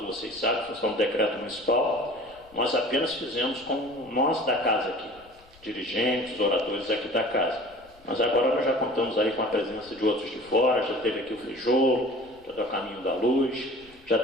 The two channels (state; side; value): noise; left; rumble, 27 dB below the sound